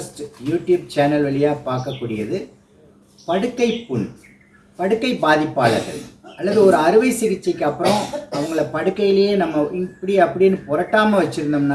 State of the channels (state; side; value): identical; both; correlation 1.00